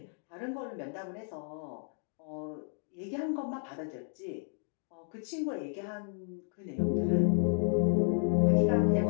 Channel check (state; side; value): silent; right; 56 dB below the other